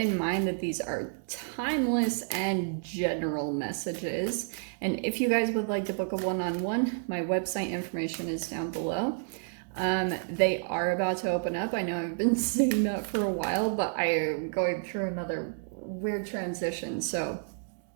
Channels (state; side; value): silent; left; digital silence